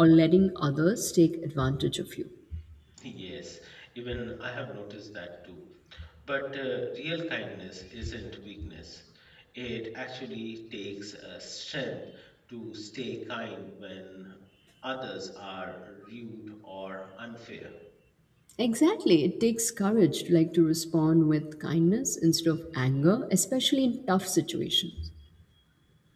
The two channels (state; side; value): identical; both; correlation 1.00